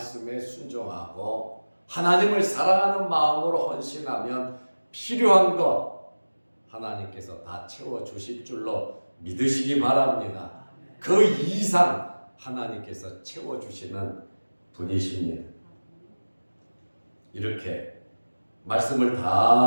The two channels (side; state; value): both; inverted; correlation -1.00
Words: 순종하고 하나님을 사랑하는 마음으로 헌신하면 필요한 것 하나님께서 다 채워주실 줄로 믿으시기 바랍니다. 그 이상 하나님께서 채워주시는 분이십니다. 이렇게 말씀을